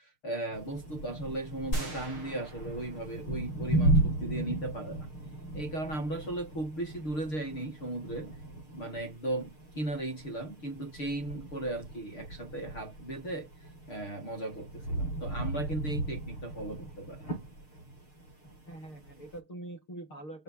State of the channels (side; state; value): right; late; 6.6 ms